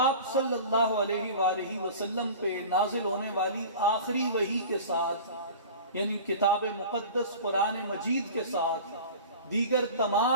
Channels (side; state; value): both; inverted; correlation -0.38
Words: صلی اللہ علیہ وآلہ وسلم پہ نازل ہونے والی آخری وحی کے ساتھ، یعنی کتاب مقدس قرآن مجید کے ساتھ، دیگر